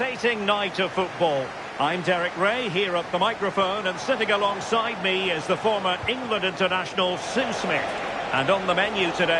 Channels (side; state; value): both; identical; correlation 1.00